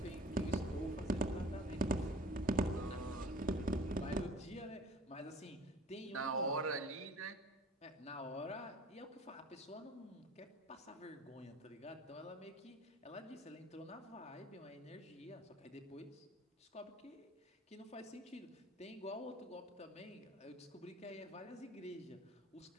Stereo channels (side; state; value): both; normal; correlation 0.46